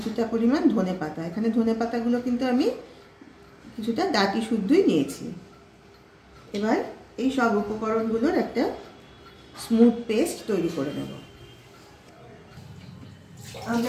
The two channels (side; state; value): both; identical; correlation 1.00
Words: পরিমাণ ধনেপাতা। এখানে ধনেপাতাগুলো কিন্তু আমি কিছুটা ডাঁটি শুদ্ধই নিয়েছি। এবার এই সব উপকরণগুলোর একটা স্মুথ পেস্ট তৈরি করে নেব।